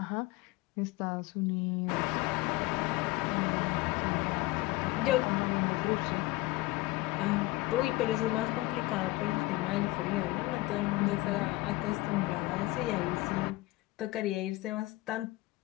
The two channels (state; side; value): quieter; right; 19.9 dB